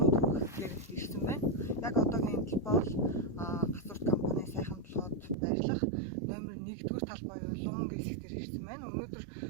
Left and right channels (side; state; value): left; drops out; at 5.4 s